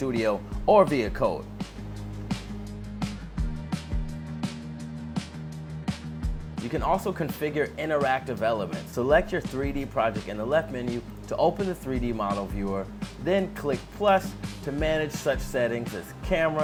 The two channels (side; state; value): both; identical; correlation 1.00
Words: or via code. You can also configure interactive elements. Select your 3D project in the left menu to open the 3D model viewer, then click plus to manage such settings as